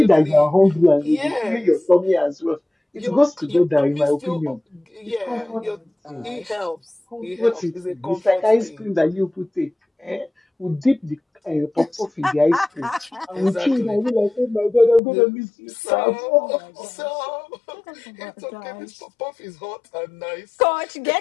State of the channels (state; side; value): drops out; right; at 15.0 s